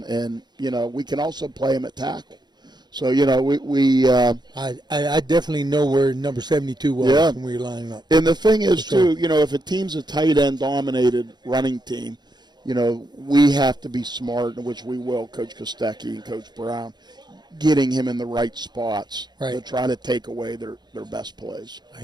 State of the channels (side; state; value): left; late; 0.21 ms